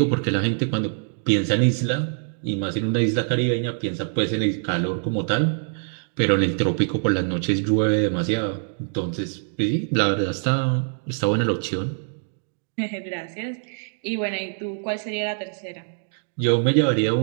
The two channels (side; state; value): left; silent; digital silence